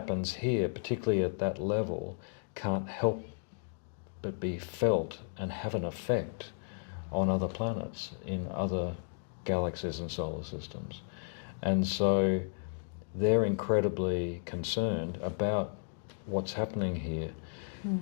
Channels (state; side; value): silent; right; digital silence